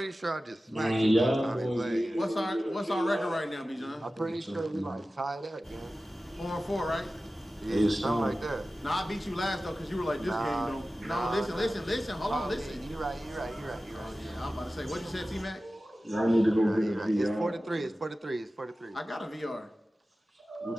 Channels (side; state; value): both; normal; correlation 0.95